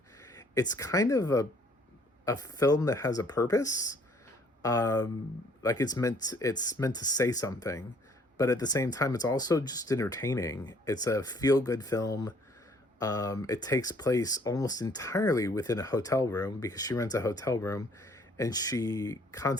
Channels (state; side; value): normal; both; correlation 0.60